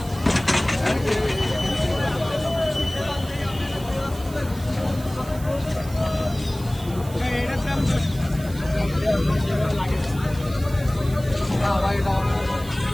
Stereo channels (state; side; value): noise; right; hiss, 18 dB below the sound